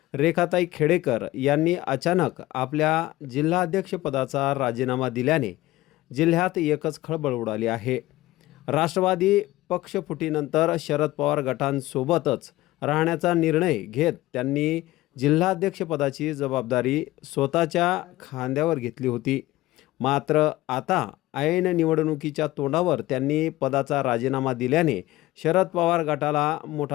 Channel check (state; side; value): quieter; right; 17.4 dB